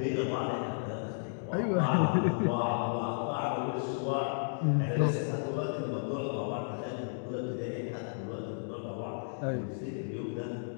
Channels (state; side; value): silent; right; digital silence